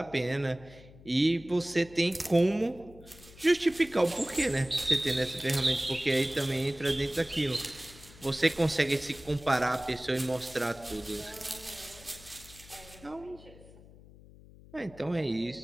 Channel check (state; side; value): noise; left; hum, 21 dB below the sound